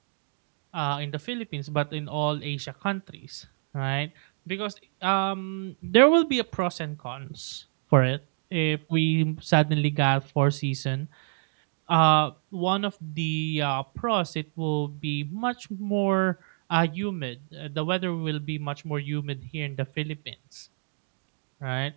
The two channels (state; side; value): silent; left; 60 dB below the other